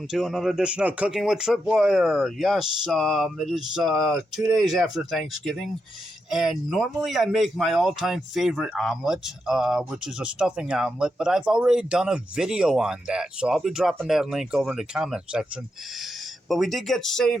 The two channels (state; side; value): normal; both; correlation 0.85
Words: to another edition of Cooking with Tripwire. Yes, it is 2 days after Thanksgiving, and normally I make my all-time favorite omelet, which is a stuffing omelet, but I've already done a video on that, so I'll be dropping that link over in the comment section. But we did get